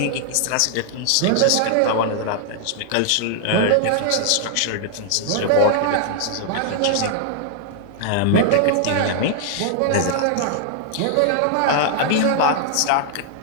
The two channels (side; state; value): both; different; correlation -0.01